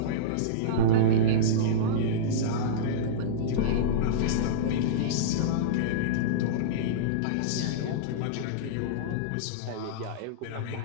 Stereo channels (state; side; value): different; both; correlation -0.04